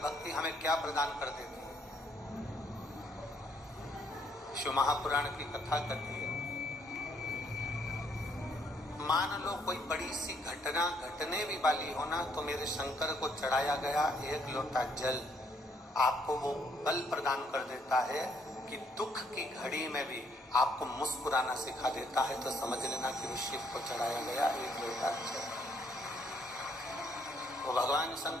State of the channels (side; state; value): both; normal; correlation 0.68